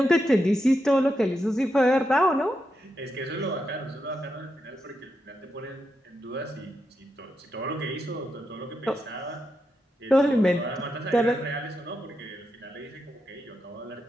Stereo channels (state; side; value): normal; both; correlation 0.85